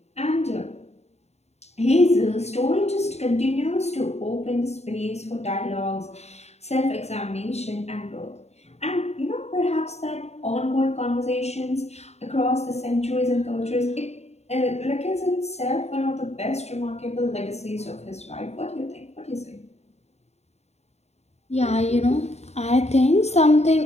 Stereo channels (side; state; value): right; late; 0.31 ms